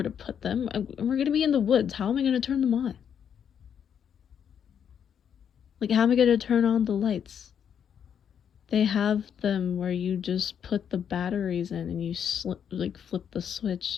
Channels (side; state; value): right; quieter; 8.3 dB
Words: to put them. We're gonna be in the woods. How am I gonna turn them on? Like, how am I gonna turn on the lights? They have them where you just put the batteries in and you flip the